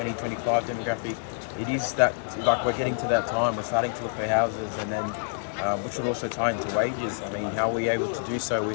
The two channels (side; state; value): right; silent; digital silence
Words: demographic, it is that, like, we're getting to that time, we're starting to look for houses, and then which would also tie into wages. I mean, how are we able to do so